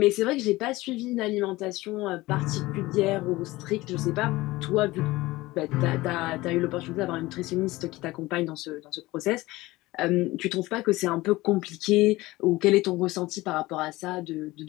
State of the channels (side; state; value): right; quieter; 19.4 dB